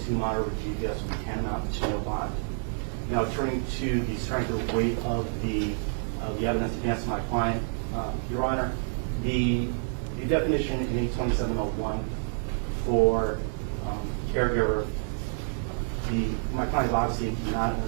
monitor with GPS would tantamount to no bond. Now, turning to the strength or weight of the evidence against my client, Your Honor, the definition in 827.01 for caregiver, my client is obviously not an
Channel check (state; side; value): silent; left; 57 dB below the other